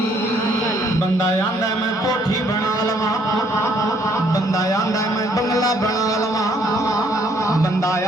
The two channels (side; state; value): both; normal; correlation 0.66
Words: बंदा आंदा मैं कोठी बना लवा, बंदा आंदा मैं बंगला बना लवा, बंदा